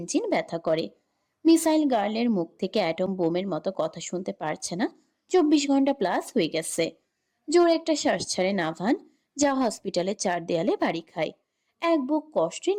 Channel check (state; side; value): identical; both; correlation 1.00